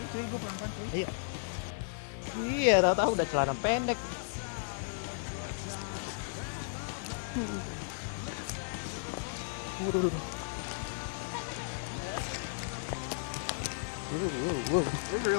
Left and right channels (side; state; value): right; silent; digital silence